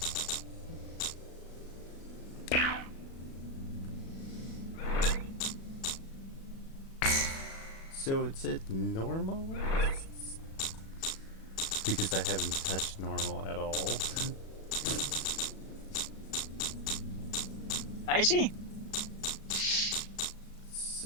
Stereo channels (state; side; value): late; right; 37 ms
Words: So it's at normal? Because I haven't touched normal at all. I see.